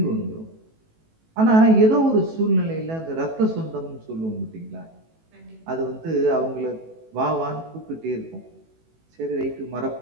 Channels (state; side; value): late; left; 18 ms